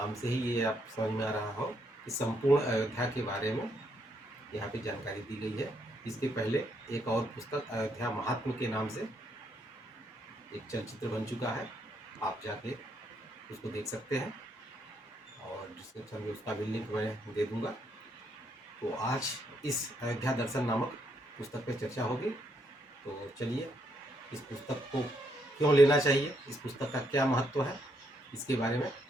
से ही ये आप समझ में आ रहा हो कि संपूर्ण अयोध्या के बारे में यहाँ पे जानकारी दी गई है। इसके पहले एक और पुस्तक अयोध्या महात्म के नाम से एक चलचित्र बन चुका है, आप जाके उसको देख सकते हैं और डिस्क्रिप्शन में उसका भी लिंक मैं दे दूंगा। तो आज इस अयोध्या दर्शन नामक पुस्तक पे चर्चा होगी। तो चलिए इस पुस्तक को क्यों लेना चाहिए, इस पुस्तक का क्या महत्व है, इसके बारे में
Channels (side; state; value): both; normal; correlation 0.75